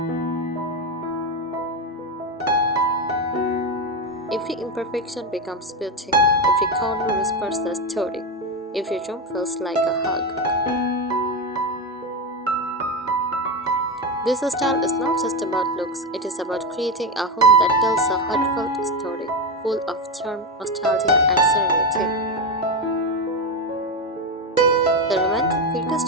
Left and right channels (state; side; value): normal; both; correlation 0.13